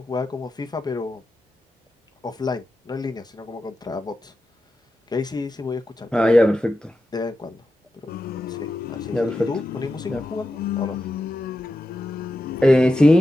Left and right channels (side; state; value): both; normal; correlation 0.90